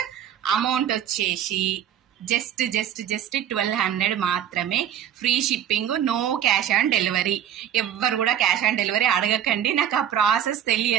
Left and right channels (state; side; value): quieter; left; 10.1 dB